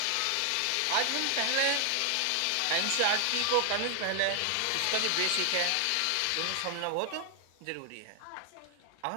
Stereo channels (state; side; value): different; both; correlation 0.00